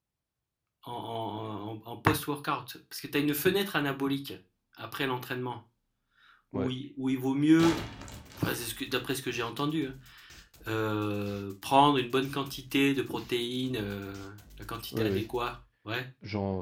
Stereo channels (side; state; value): both; identical; correlation 1.00